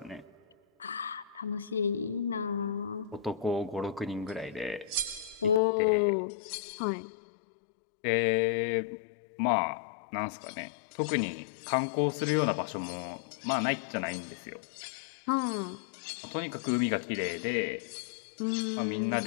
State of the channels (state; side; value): drops out; right; at 5.6 s